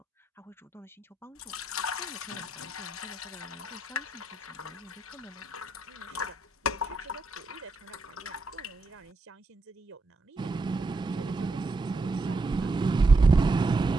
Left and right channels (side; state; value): left; quieter; 3.0 dB